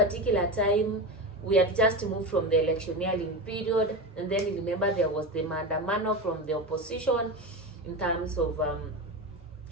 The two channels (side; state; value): both; normal; correlation 0.21